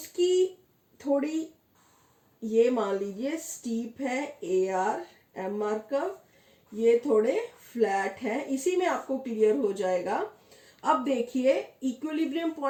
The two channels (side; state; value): both; identical; correlation 1.00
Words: थोड़ी, ये मान लीजिए स्टीप है AR MR कर्व, ये थोड़े फ्लैट है, इसी में आपको क्लियर हो जाएगा। अब देखिए इक्विलिब्रियम